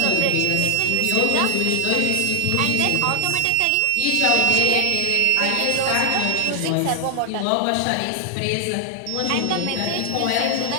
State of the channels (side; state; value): both; different; correlation 0.00